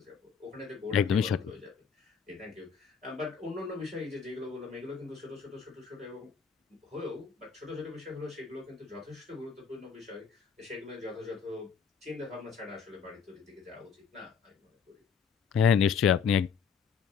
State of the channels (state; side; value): quieter; right; 6.6 dB